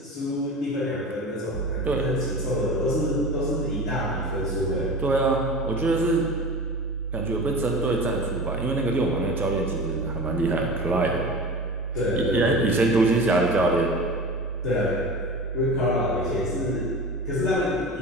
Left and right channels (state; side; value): normal; both; correlation 0.32